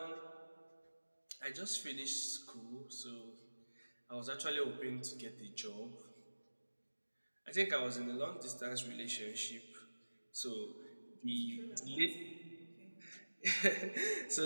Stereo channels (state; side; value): inverted; both; correlation -1.00